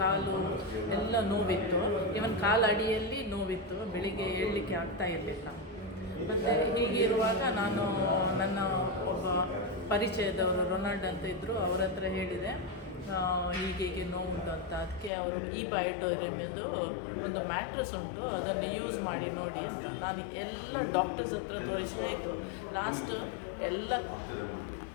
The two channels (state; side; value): drops out; right; at 15.1 s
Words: ಎಲ್ಲ ನೋವಿತ್ತು. ಇವನ್ ಕಾಲು ಅಡಿಯಲ್ಲಿ ನೋವಿತ್ತು. ಬೆಳಿಗ್ಗೆ ಏಳಲಿಕ್ಕೆ ಆಗ್ತಾ ಇರಲಿಲ್ಲ. ಮತ್ತು ಹೀಗಿರುವಾಗ ನಾನು ನನ್ನ ಒಬ್ಬ ಪರಿಚಯದವರು ರೊನಾಲ್ಡ್ ಅಂತ ಇದ್ದರು, ಅವ್ರ ಹತ್ರ ಹೇಳಿದೆ ಹೀಗೆ ನೋವುಂಟು ಅಂತ. ಅದಕ್ಕೆ ಅವರು ಬಯೋಟೋರಿಯಮ್ದು ಒಂದು ಮ್ಯಾಟ್ರಸ್ ಉಂಟು, ಅದನ್ನು ಯೂಸ್ ಮಾಡಿ ನೋಡಿ ಅಂತ. ನಾನು ಎಲ್ಲ ಡಾಕ್ಟರ್ಸ್ ಹತ್ರ ತೋರಿಸಿ ಆಯಿತು. ಲಾಸ್ಟ್ ಎಲ್ಲ